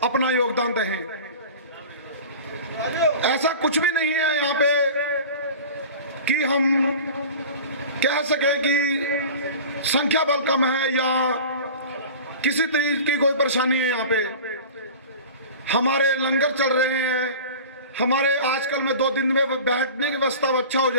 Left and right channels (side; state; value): both; inverted; correlation -0.37